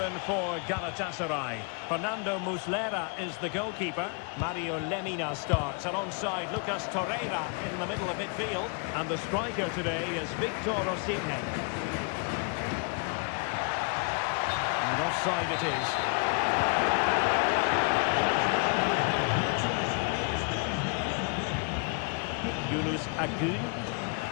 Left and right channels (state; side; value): quieter; right; 37.6 dB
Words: for Galatasaray. Fernando Muslera is the goalkeeper. Mario Lemina starts alongside Lucas Torreira in the middle of midfield. And the striker today is Victor Osimhen. And offside it is. Yunus Agun.